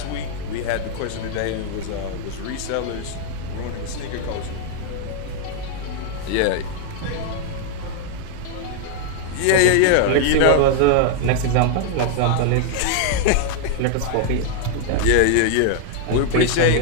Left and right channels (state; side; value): different; both; correlation 0.00